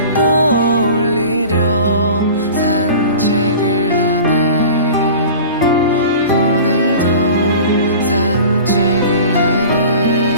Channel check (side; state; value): both; inverted; correlation -0.39